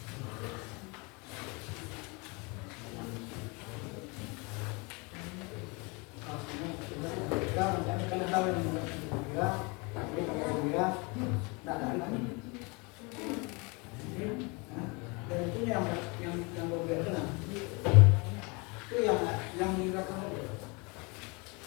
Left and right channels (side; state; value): right; quieter; 29.2 dB